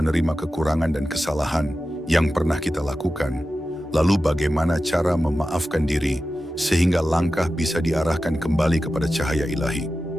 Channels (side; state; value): both; normal; correlation 0.93